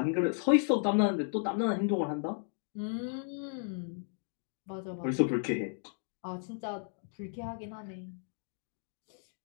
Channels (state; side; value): silent; right; 55 dB below the other